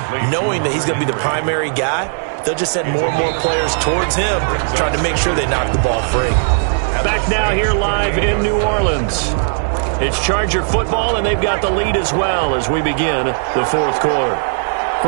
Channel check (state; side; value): silent; left; 68 dB below the other